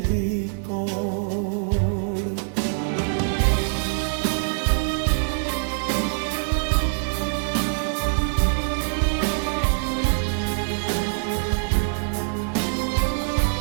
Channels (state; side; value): silent; left; digital silence